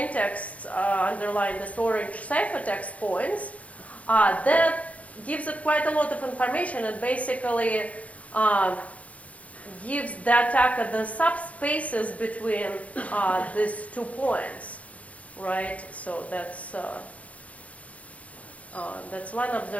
underlying this orange ciphertext points, that gives it quite a lot of information. It basically gives the attacker the subspaces between these 2 points, right? So that's one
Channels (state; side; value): late; right; 0.067 ms